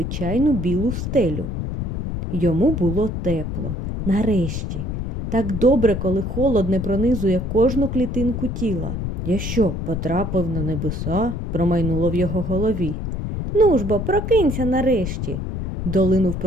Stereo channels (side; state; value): left; noise; rumble, 3 dB below the sound